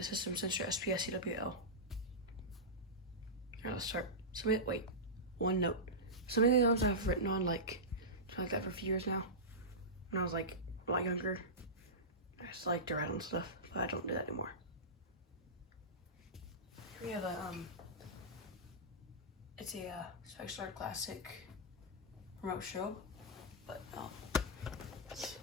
System Sensor SPS CWL. Alright, let's start. One note. Some of the alarms I've written on like that for a few years now. When I was like a lot younger, I just like to write on stuff, but I don't do that anymore. Here we have it's a Spexstar Classic remote strobe, but it's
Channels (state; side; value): normal; both; correlation -0.15